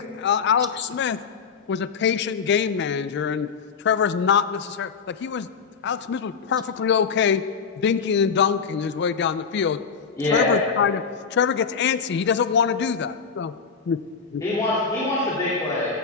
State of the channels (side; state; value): right; quieter; 5.9 dB